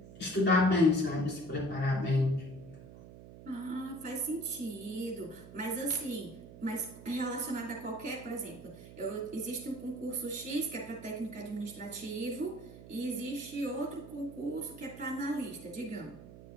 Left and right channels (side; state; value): right; noise; hum, 16 dB below the sound